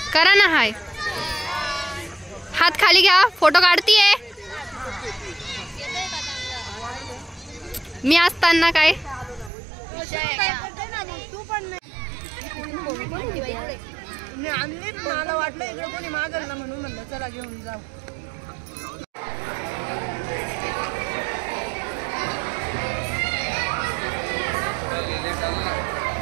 करा ना, हाय हात खाली घ्या, फोटो काढतीये मी असताना. काय मला वाटलं इकडे कोणी मागल ना, म्हणून म्हणलं चला घेऊन जाऊ.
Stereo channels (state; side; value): drops out; left; at 9.5 s